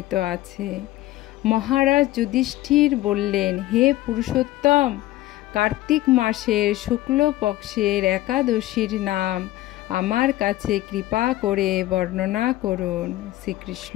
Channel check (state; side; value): quieter; right; 16.3 dB